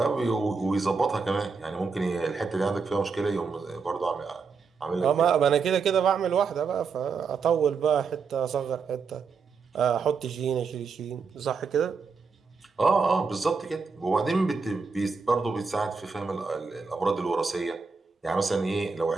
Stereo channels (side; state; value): left; quieter; 5.1 dB